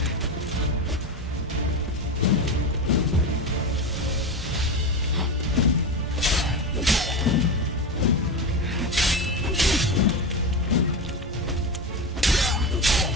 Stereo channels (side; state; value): both; normal; correlation 0.19